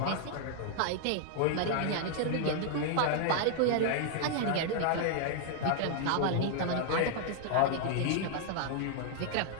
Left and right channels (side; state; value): both; different; correlation 0.00